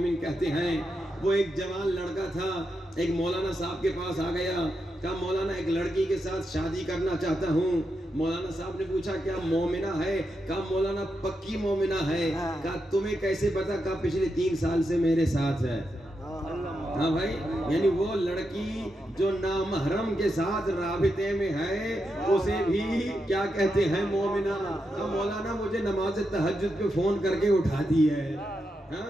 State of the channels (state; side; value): normal; both; correlation 0.85